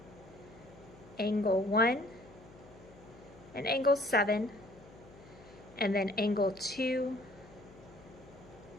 angle 1 and angle 7, and then angle 2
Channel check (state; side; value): noise; left; hum, 21 dB below the sound